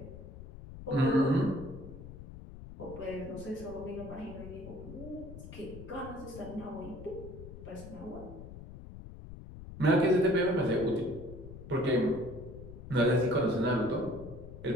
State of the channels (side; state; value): left; noise; rumble, 13 dB below the sound